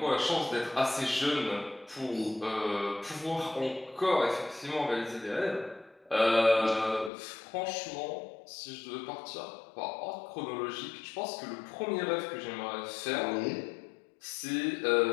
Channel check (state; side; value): drops out; right; at 7.1 s